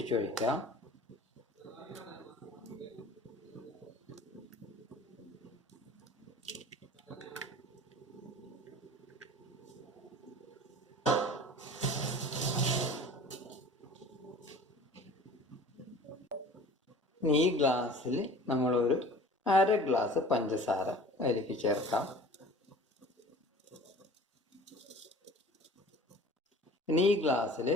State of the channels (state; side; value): normal; both; correlation 0.44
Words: ഈ ഗ്ലാസ്സിൽ നമ്മളൊരു 1/2 ഗ്ലാസ് പഞ്ചസാര അതിലേക്ക് ചേർക്കാം. ഇനി ഈ ഗ്ലാസ്സിൽ